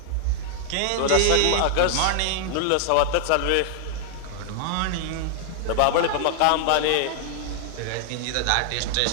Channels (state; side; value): different; both; correlation 0.00